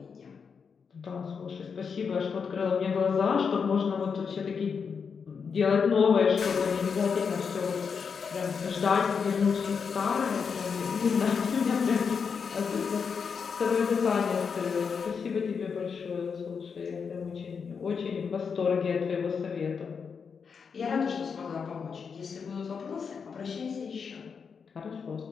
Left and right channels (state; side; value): quieter; right; 6.0 dB